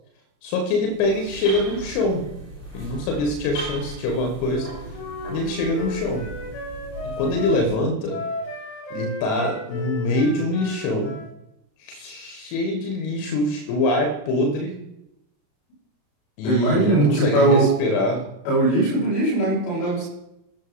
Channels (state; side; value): late; right; 34 ms